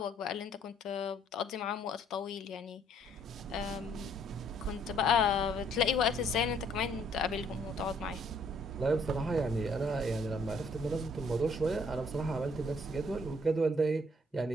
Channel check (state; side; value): normal; both; correlation 0.64